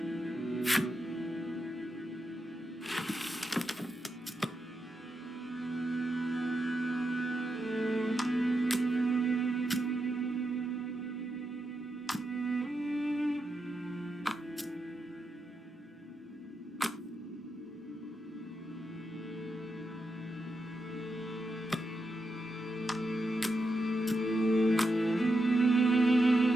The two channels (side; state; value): both; normal; correlation 0.85